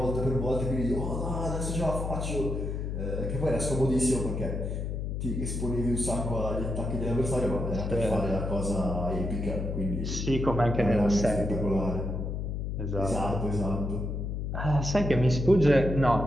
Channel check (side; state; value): left; noise; hum, 3 dB below the sound